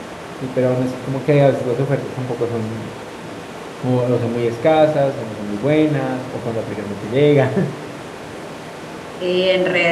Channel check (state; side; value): identical; both; correlation 1.00